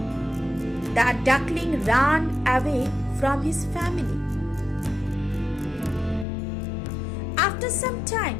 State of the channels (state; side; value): drops out; right; at 6.2 s